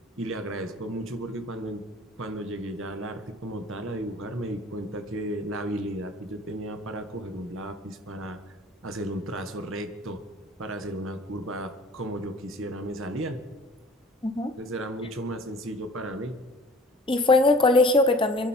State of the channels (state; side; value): normal; both; correlation 0.48